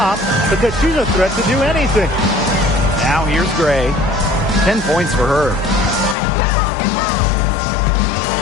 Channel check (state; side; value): drops out; right; at 6.2 s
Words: because she's a threat to do anything. Now here's Gray. 10 points for her.